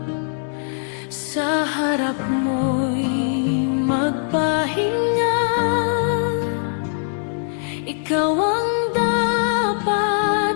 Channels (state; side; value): silent; right; digital silence